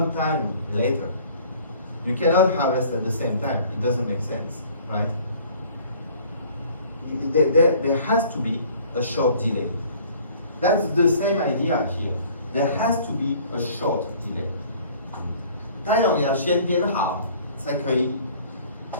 later. You cannot harvest at the same time. It doesn't make sense, right? There has to be a short delay. That's the same idea here. There has to be a short delay. 太阳要先变好，才可以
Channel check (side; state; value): both; inverted; correlation -0.53